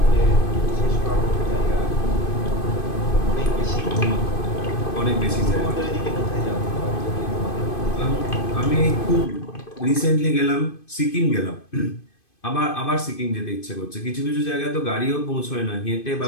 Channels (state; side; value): late; right; 2.5 ms